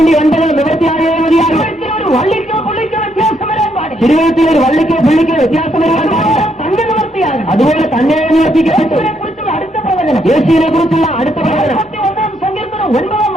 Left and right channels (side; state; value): both; normal; correlation 0.74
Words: നിവർത്തിയായേ മതിയാകും. വള്ളിക്കോ പുള്ളിക്കോ വ്യത്യാസം വരാൻ പാടില്ല. തിരുവഴുത്തിൽ ഒരു വള്ളിക്കോ പുള്ളിക്കോ വ്യത്യാസം വരാൻ പാടില്ല. തന്നെ നിവർത്തിയാകും. അതുപോലെ തന്നെ നിവർത്തിക്കപ്പെട്ടു. കുറിച്ചുള്ള അടുത്ത പ്രവചനം, യേശുവിനെ കുറിച്ചുള്ള അടുത്ത പ്രവചനം 41 സങ്കീർത്തനം 9